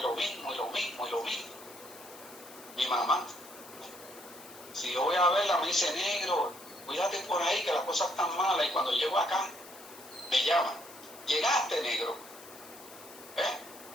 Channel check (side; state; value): left; noise; hiss, 18 dB below the sound